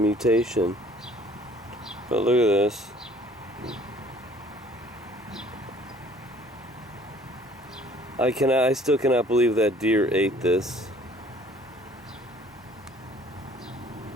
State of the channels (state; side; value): normal; both; correlation 0.55